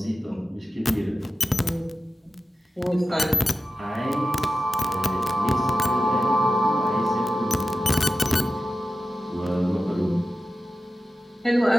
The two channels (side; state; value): both; normal; correlation 0.93